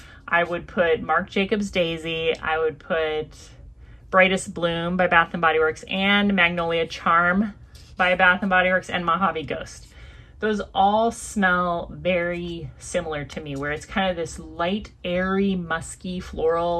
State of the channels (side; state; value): both; identical; correlation 1.00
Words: I would put Marc Jacobs Daisy, I would put Brightest Bloom by Bath & Body Works, and Magnolia Charm by Bath & Body Works, and Mojave Ghost. Those all smell very similar to me, where it's kind of this light, airy, musky